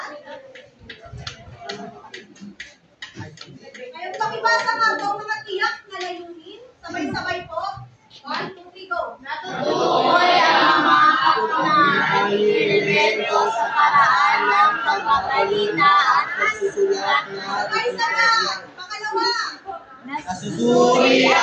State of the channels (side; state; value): both; identical; correlation 1.00